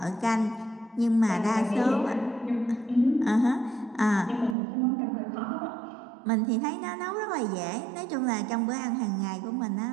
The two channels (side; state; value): left; drops out; at 4.5 s